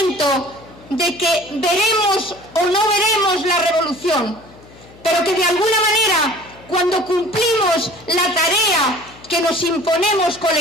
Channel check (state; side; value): noise; left; hum, 23 dB below the sound